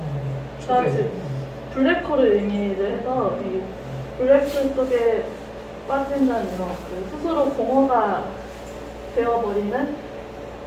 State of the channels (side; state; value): both; identical; correlation 1.00